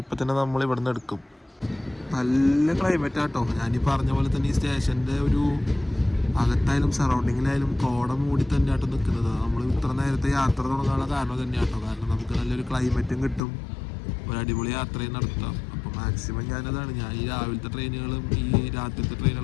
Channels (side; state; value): right; drops out; at 13.4 s